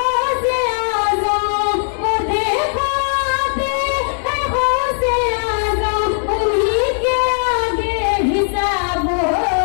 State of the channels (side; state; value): right; silent; 68 dB below the other